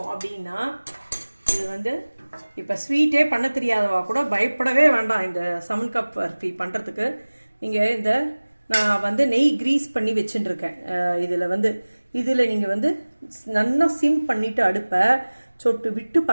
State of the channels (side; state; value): both; inverted; correlation -1.00